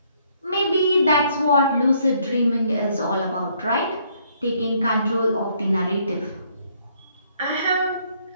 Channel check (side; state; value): both; inverted; correlation -0.68